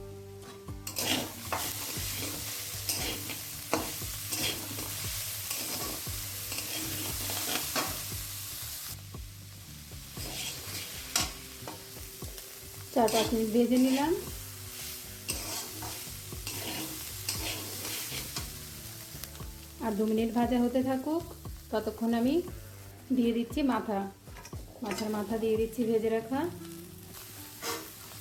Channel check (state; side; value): identical; both; correlation 1.00